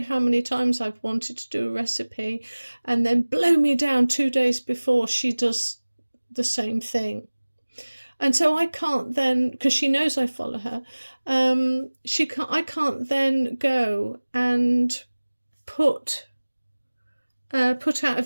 how many times I've wanted to do a recipe and then blow me down 2 days before she does the same thing. And so I can't then, because she knows I follow her, I can't then go and put out a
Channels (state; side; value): inverted; both; correlation -1.00